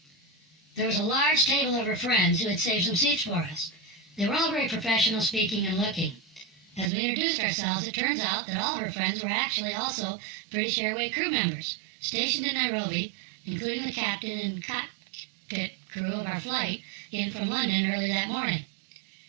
There was a large table of her friends who had saved some seats for us. They were all very professional speaking and looking. As we introduced ourselves, it turns out that all of her friends were actually also British Airways crew members, stationed in Nairobi, including the captain and cockpit crew of our flight in from London early that morning.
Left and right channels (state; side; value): drops out; left; at 6.9 s